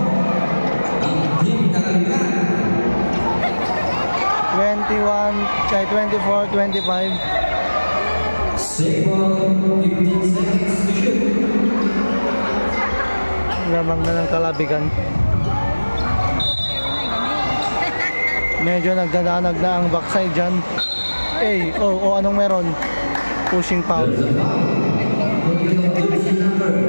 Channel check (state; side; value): inverted; both; correlation -1.00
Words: Ang team na kalimutan. 21 kay 24-25. Save ball, 15 seconds to shoot. Lamang na ng kalabigan. Medyo nagdadanag na ang backside dyan. Anong meron? Pushing foul. There's a foul. Jersey number